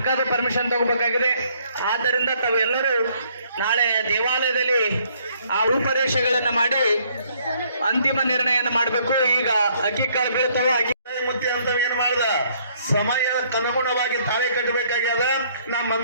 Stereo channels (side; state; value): both; inverted; correlation -0.65